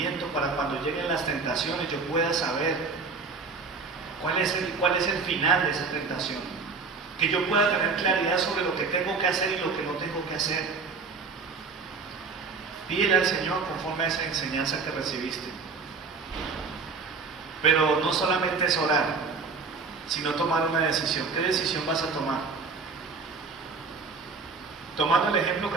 para cuando lleguen las tentaciones yo pueda saber cuál es el final de esa tentación, que yo pueda tener claridad sobre lo que tengo que hacer y lo que no tengo que hacer. Pídele al Señor conforme a esa enseñanza que recibiste. Pero no solamente es orar, sino tomar una decisión. ¿Qué decisión vas a tomar? Tomando el ejemplo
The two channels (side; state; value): left; quieter; 4.7 dB